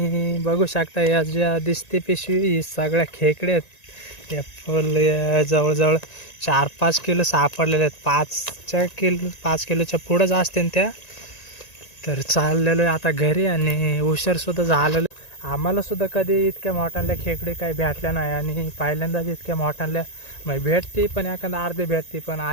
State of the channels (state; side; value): late; right; 1.9 ms